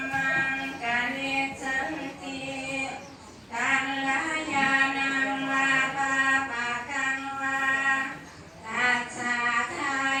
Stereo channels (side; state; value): both; identical; correlation 1.00